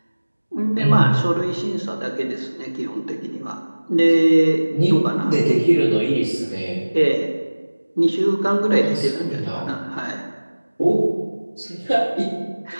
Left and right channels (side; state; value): both; inverted; correlation -1.00